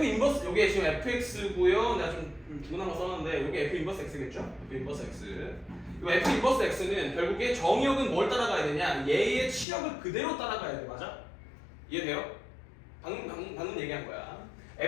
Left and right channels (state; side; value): drops out; right; at 9.7 s